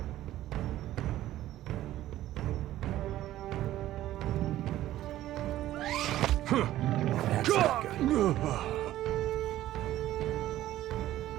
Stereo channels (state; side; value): quieter; left; 14.1 dB